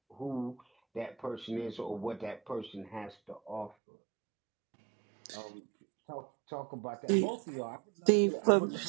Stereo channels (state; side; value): drops out; left; at 3.7 s